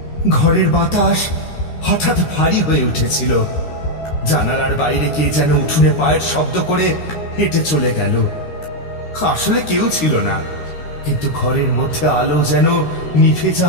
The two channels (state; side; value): late; right; 13 ms